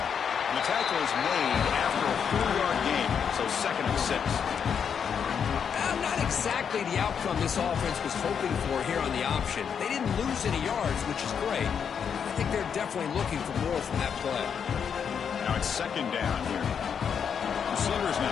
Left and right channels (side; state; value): right; quieter; 7.3 dB